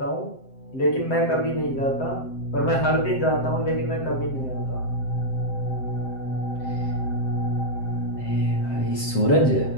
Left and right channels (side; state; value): right; late; 7.6 ms